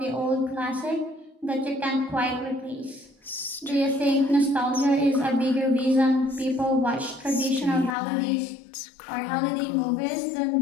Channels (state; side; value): drops out; right; at 7.9 s